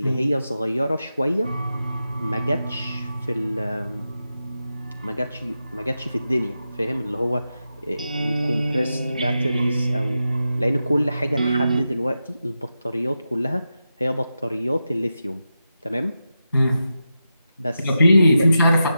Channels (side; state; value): both; inverted; correlation -0.89